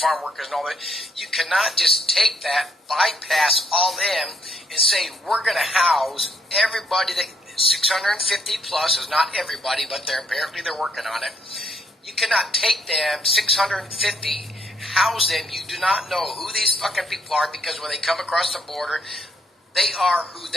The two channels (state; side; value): normal; both; correlation 0.70